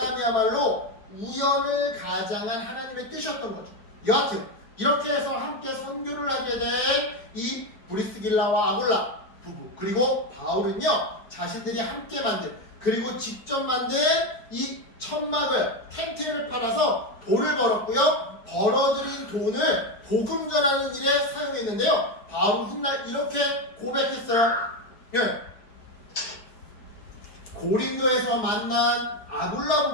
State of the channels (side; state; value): right; late; 4.7 ms